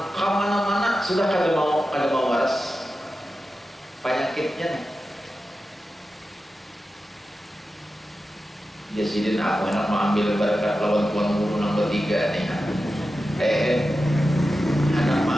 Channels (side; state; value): both; normal; correlation 0.92